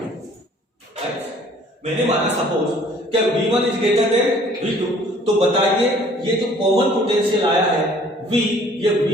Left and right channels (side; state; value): both; normal; correlation 0.55